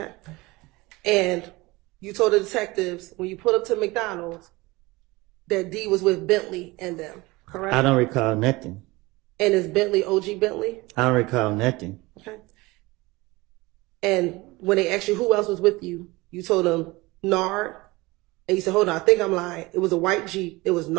And you told the detectives when you pulled up to McDonald's that D was with Bentley and them, correct? I don't recall nothing. And is Bentley OG Bentley? I don't recall nothing. Okay. And when they asked you who else was with you, you told them Nard. And you said, hold on, I think I'm lying. It was a white Jeep. It was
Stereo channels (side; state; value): left; quieter; 22.0 dB